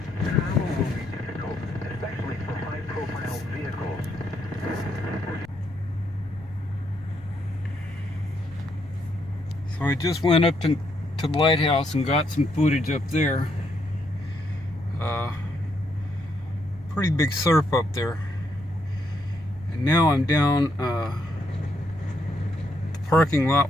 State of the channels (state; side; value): noise; left; rumble, 20 dB below the sound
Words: Travel will be difficult, especially for high-profile vehicles. So I just went up to the lighthouse and got some footage up there. Pretty big surf up there. And now I'm down the parking